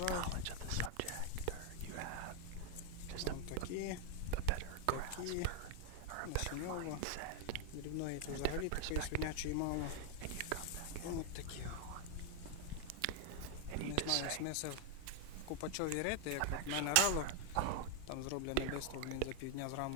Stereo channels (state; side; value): different; both; correlation 0.00